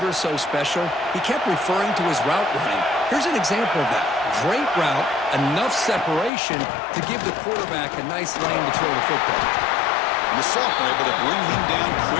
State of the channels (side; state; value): right; drops out; at 6.3 s